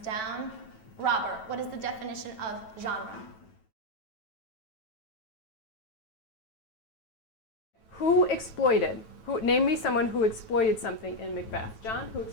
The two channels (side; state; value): right; late; 9.1 ms